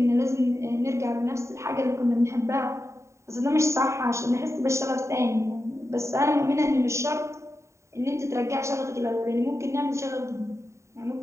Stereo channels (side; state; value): left; late; 0.14 ms